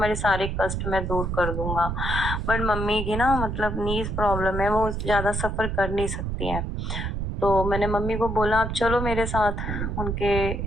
सारे कष्ट मैं दूर कर दूंगा। बट मम्मी की ना मतलब नीज प्रॉब्लम है, वो ज्यादा सफर कर नहीं सकती है। तो मैंने मम्मी को बोला आप चलो मेरे साथ, उनके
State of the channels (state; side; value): noise; right; rumble, 2 dB below the sound